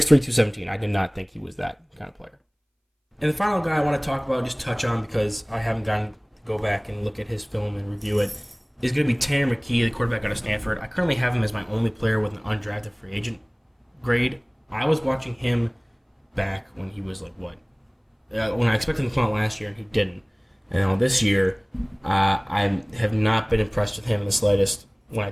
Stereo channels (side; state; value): both; identical; correlation 1.00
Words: 217. I did not think he was that kind of player. And the final guy I want to talk about, just touch on, because I haven't gotten to go back and look at his film and review it, is going to be Tanner McKee, the quarterback out of Stanford. I currently have him as my only player with an undrafted free agent grade. I was watching him back when he was like, what? When I expected him to come out last year, and he didn't. And this year, I have not been impressed with him in the slightest. When I